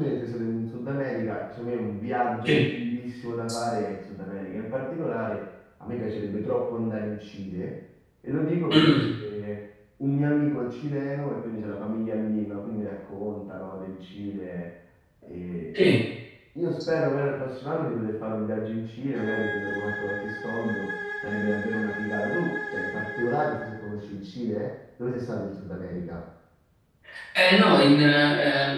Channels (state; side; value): identical; both; correlation 1.00